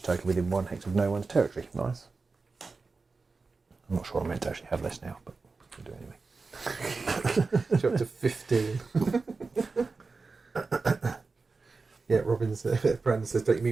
token within 1 hex of no one's territory. Nice. I'm not sure I'm meant to actually have this now, but we'll do it anyway. You're up to 15. Yeah, Robin's Brandon says, don't you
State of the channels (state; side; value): quieter; left; 4.1 dB